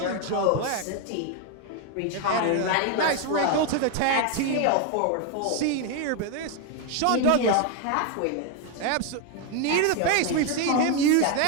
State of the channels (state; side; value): different; both; correlation 0.01